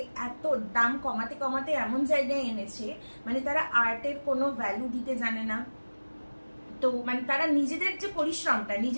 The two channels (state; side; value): inverted; both; correlation -1.00